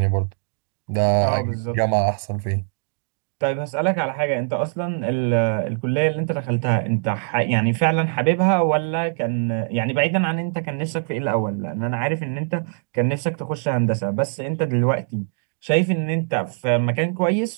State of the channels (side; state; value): left; silent; 64 dB below the other